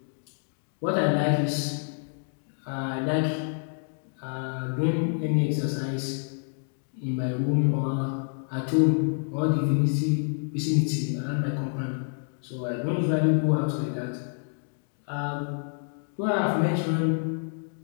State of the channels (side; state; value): right; silent; 59 dB below the other